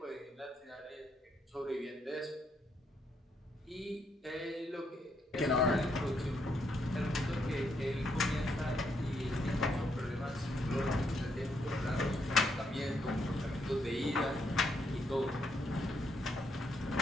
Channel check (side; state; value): both; normal; correlation 0.76